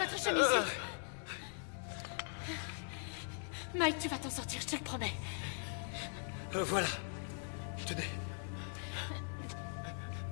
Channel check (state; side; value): silent; right; 51 dB below the other